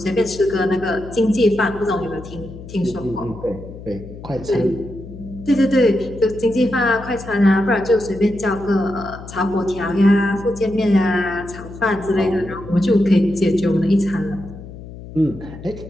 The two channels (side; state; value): left; noise; hum, 14 dB below the sound